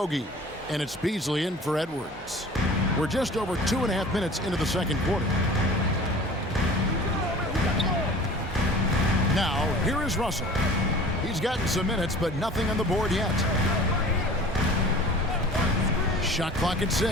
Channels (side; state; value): both; normal; correlation 0.43